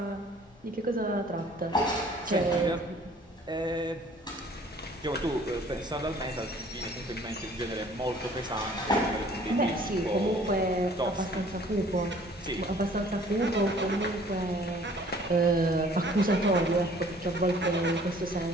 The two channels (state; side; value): normal; both; correlation 0.54